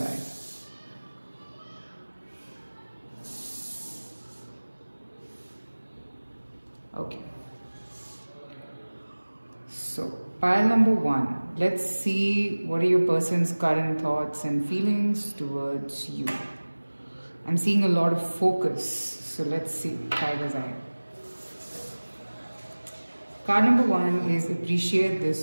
Eye. Okay, so pile number 1, let's see what are your person's current thoughts and feelings towards you. I'm seeing a lot of focus, so let's see. Tiger's Eye. Card number 1 is appreciate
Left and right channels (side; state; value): both; inverted; correlation -1.00